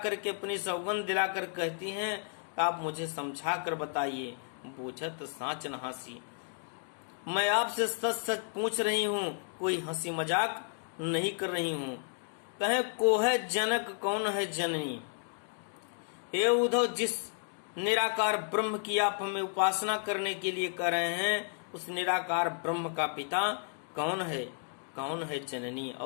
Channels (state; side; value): silent; right; 56 dB below the other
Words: अपनी सौगंध दिलाकर कहती हैं आप मुझे समझा कर बताइए। बूझत साच न हंसी। मैं आपसे सच सच पूछ रही हूँ, कोई हंसी मजाक नहीं कर रही हूँ। कहे को है जनक कौन है जननी। हे उद्धव, जिस निराकार ब्रह्म की आप हमें उपासना करने के लिए कर रहे हैं, उस निराकार ब्रह्म का पिता कौन है, कौन है जननी।